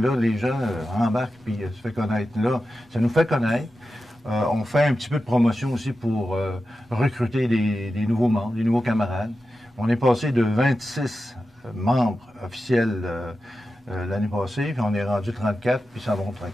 là, les gens embarquent puis se fait connaître. Là, ça nous fait connaître. On fait un petit peu de promotion aussi pour recruter des nouveaux membres, des nouveaux camarades. On est passé de 26 membres officiels l'année passée, puis on est rendu 34, puis ça va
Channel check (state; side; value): normal; both; correlation 0.92